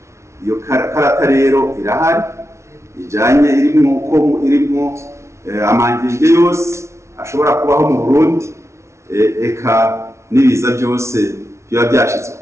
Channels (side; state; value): left; late; 0.13 ms